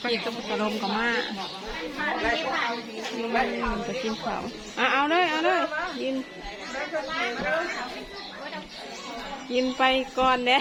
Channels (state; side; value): identical; both; correlation 1.00